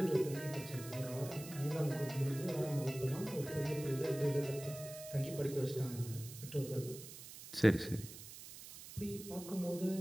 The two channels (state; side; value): noise; right; hiss, 13 dB below the sound